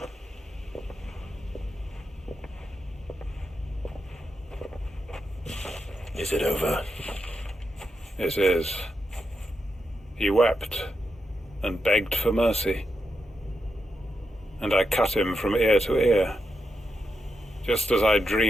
Is it over? It is. He wept and begged for mercy. And I cut him from ear to ear. Just as I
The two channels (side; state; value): both; normal; correlation 0.86